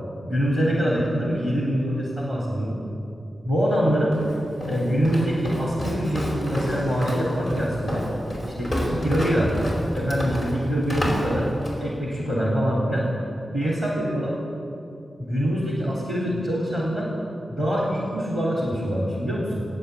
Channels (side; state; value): both; normal; correlation 0.90